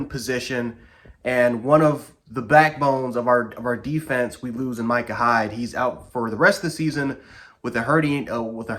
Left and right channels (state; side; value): identical; both; correlation 1.00